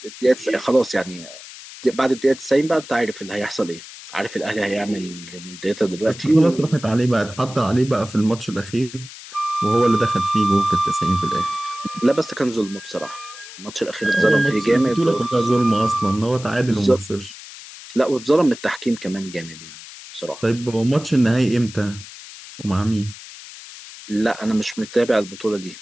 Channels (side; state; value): left; noise; hiss, 15 dB below the sound